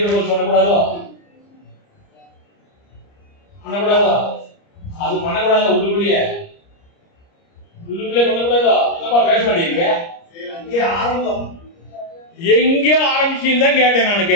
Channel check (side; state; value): right; late; 30 ms